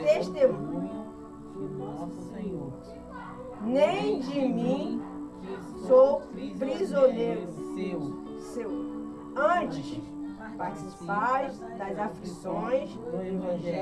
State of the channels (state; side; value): identical; both; correlation 1.00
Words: de nosso Senhor, nem de mim, que sou prisioneiro seu. Antes, participais das aflições do